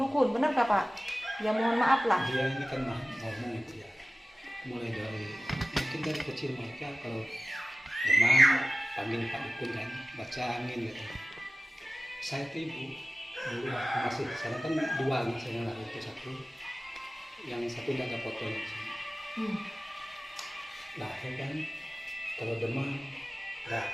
benar gak Pak? Ya mohon maaf lah. Dia ini kan ngomong itu ya, mulai dari mungkin dari kecil mereka kalau demam panggil Pak Dukun kan, baca angin gitu. Saya tuh Ibu dulu waktu masih di sana kan 2 anak saya lah, itu 1, yang 1 tidak ada fotonya di sini. Nah ya kan kalau demam dah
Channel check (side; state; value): both; normal; correlation 0.96